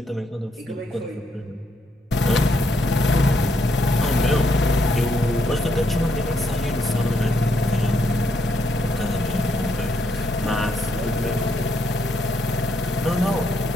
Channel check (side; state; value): both; normal; correlation 0.75